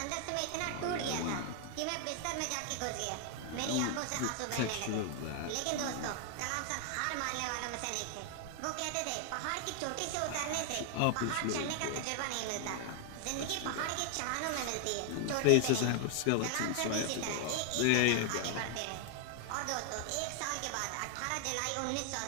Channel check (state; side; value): different; both; correlation 0.00